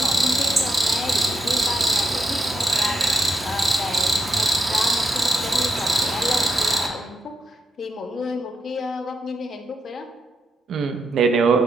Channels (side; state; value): both; normal; correlation 0.82